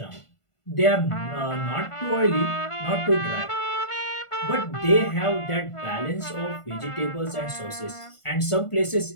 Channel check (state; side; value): late; right; 1.5 ms